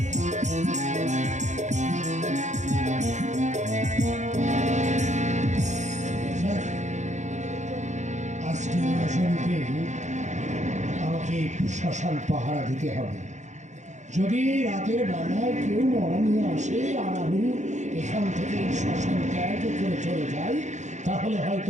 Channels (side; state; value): left; late; 0.34 ms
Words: আজকে আসনকে আমাকে শ্মশান পাহারা দিতে হবে। যদি রাতের বেলায় কেউ মরা নিয়ে আসে আর আমি এখান থেকে শ্মশান ত্যাগ করে চলে যাই, তাহলে